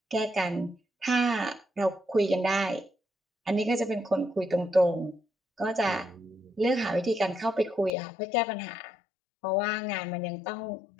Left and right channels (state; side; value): drops out; right; at 7.9 s